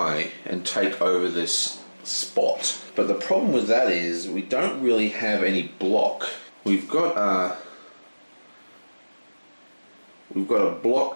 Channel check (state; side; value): inverted; both; correlation -1.00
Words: and take over this spot. But the problem with that is we don't really have any block. We've got a